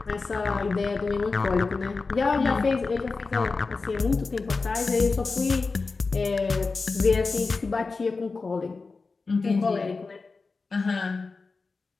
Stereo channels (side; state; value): right; quieter; 4.1 dB